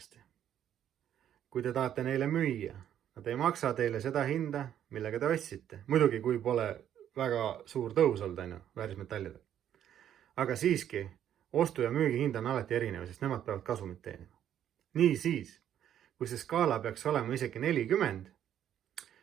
Kui te tahate neile müüa, nad ei maksa teile seda hinda, millega te ostsite. Muidugi, kui pole väga suur tõus olnud väärismetallidel. Aga siiski, ostu- ja müügihind on alati erinev, sest nemad peavad kasumit teenima. Nii siis, kui see skaala peaks olema isegi 40,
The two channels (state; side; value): quieter; left; 10.3 dB